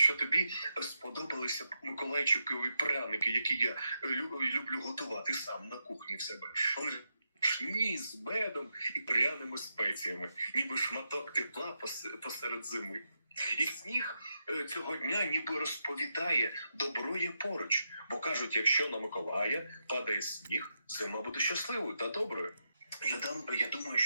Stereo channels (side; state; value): both; inverted; correlation -0.85